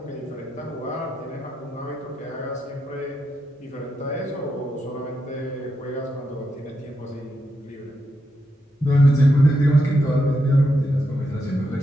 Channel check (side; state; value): both; normal; correlation 0.83